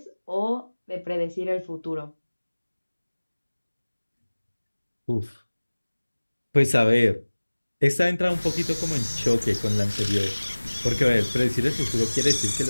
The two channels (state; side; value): inverted; both; correlation -1.00